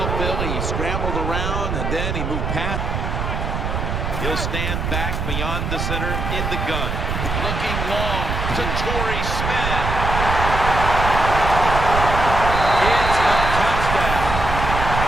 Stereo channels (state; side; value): noise; right; rumble, 2 dB below the sound